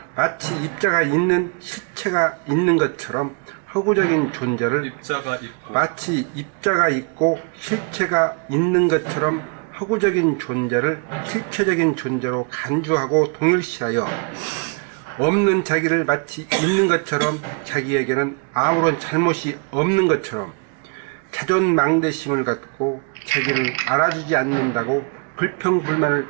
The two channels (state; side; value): quieter; left; 38.2 dB